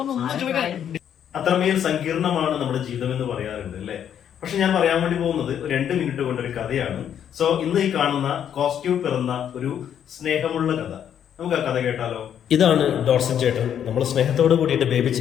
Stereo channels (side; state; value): right; quieter; 9.3 dB